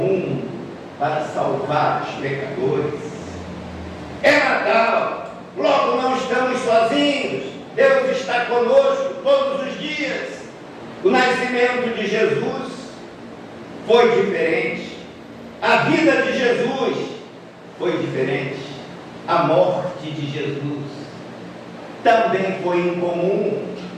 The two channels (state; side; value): identical; both; correlation 1.00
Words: para salvar os pecadores. É Natal, logo não estamos sozinhos. Deus está conosco todos os dias. O nascimento de Jesus foi diferente. A vida de Jesus foi diferente. A morte de Jesus também foi incomum.